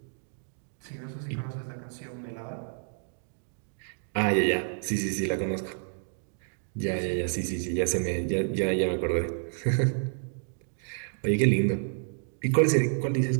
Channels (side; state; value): left; silent; digital silence